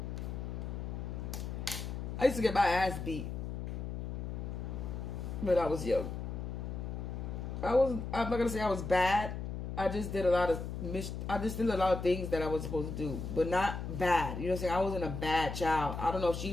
I used to get my ass beat when I was young. I'm not gonna say I was bad. I just did a lot of things that I was supposed to do, but not bad. You know what I'm saying? I wasn't a bad child. I don't know if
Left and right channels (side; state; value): left; noise; hum, 5 dB below the sound